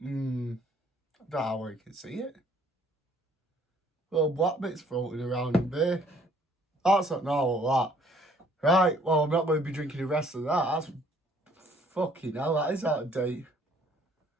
know how you can see it. Little black bits floating around in beer. That's not normal, that. Right, well, I'm not going to be drinking the rest of that. That's fucking hell, that is out of date.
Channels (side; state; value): both; normal; correlation 0.60